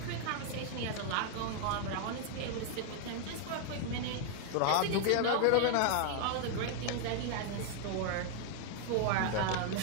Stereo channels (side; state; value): both; different; correlation 0.00